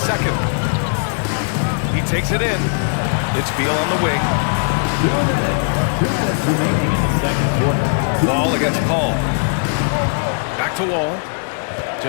He takes it in. It's Beal on the wing. Wall against Paul. Back to Wall.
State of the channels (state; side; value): silent; right; 63 dB below the other